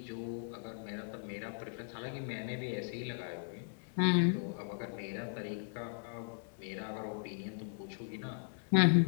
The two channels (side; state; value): right; silent; 53 dB below the other